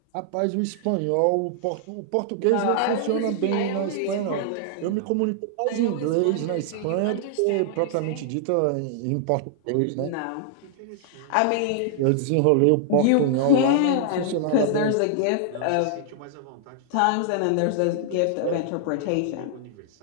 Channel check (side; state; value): both; different; correlation -0.01